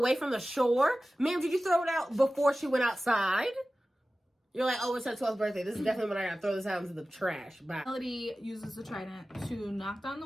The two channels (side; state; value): both; normal; correlation 0.96